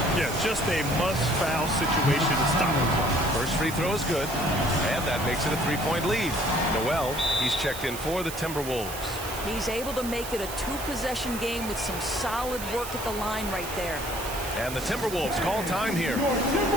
Yeah, just a must-foul situation to stop the clock. First free throw is good. And that makes it a 3-point lead. Noel, he's checked in for the Timberwolves. He's able to make it a 2-possession game with some solid work at the line right there. And the Timberwolves call time here.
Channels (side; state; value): right; noise; hiss, 10 dB below the sound